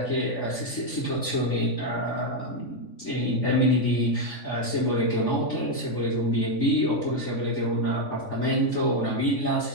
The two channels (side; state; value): right; late; 3.5 ms